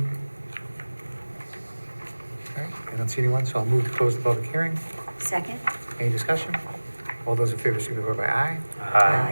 All right, I don't see anyone, so I'll move to close the public hearing. Second? Any discussion? All those in favor signify by aye.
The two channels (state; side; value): inverted; both; correlation -1.00